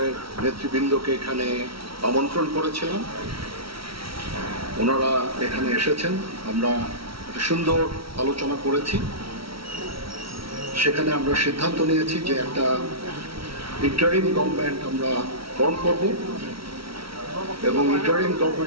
নেতৃবৃন্দকে এখানে আমন্ত্রণ করেছিলাম, ওনারা এখানে এসেছেন। আমরা একটা সুন্দর আলোচনা করেছি। সেখানে আমরা সিদ্ধান্ত নিয়েছি যে একটা ইন্টারিম গভর্নমেন্ট আমরা ফর্ম করব এবং ইন্টারিম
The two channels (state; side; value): late; left; 0.75 ms